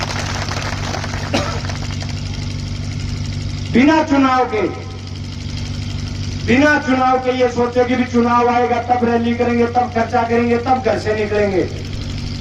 बिना चुनाव के ये सोचे कि भी चुनाव आएगा तब रैली करेंगे, तब खर्चा करेंगे, तब घर से निकलेंगे।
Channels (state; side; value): identical; both; correlation 1.00